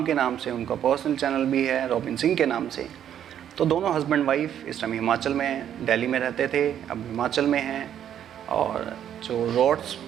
के नाम से, उनका पर्सनल चैनल भी है रॉबिन सिंह के नाम से। तो दोनों हस्बैंड वाइफ इस टाइम हिमाचल में हैं, दिल्ली में रहते थे, अब हिमाचल में हैं। और जो रोड्स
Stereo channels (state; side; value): quieter; left; 9.9 dB